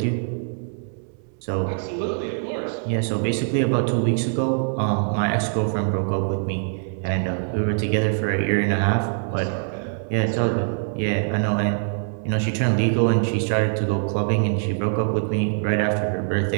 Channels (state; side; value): silent; left; 63 dB below the other